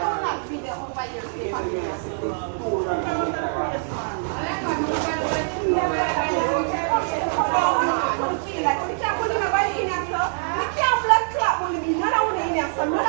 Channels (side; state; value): left; silent; 63 dB below the other